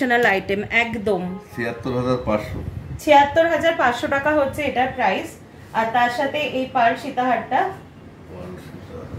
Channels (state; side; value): identical; both; correlation 1.00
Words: আইটেম, একদম 76,500। 76,500 টাকা হচ্ছে এটার প্রাইস। আর তার সাথে এই পার্ল সীতাহারটা